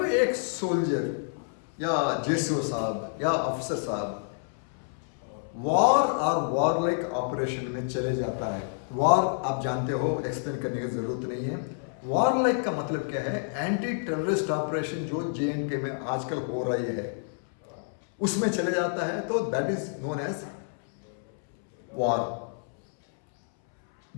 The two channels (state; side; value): silent; right; 59 dB below the other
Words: एक सोल्जर या जेसीओ साहब या अफसर साहब वॉर और वॉर लाइक ऑपरेशन में चले जाता है। वॉर आप जानते हो, एक्सप्लेन करने की जरूरत नहीं है। वॉर लाइक का मतलब क्या है? एंटी टेररिस्ट ऑपरेशन जो JNK में आजकल हो रही है उसमें चले जाता है, तो that is known as war.